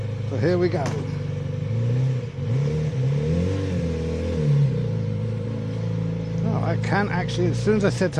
So here we go. Oh, I can actually, as soon as I set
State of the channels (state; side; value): identical; both; correlation 1.00